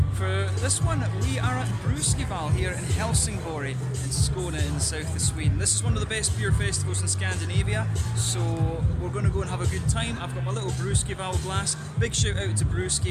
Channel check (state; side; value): identical; both; correlation 1.00